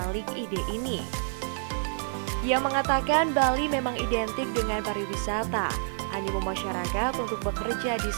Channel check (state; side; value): silent; left; digital silence